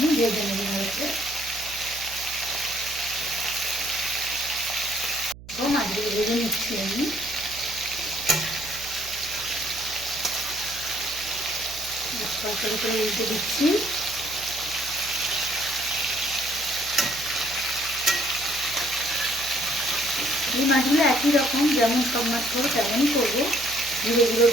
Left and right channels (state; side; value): noise; right; hum, 17 dB below the sound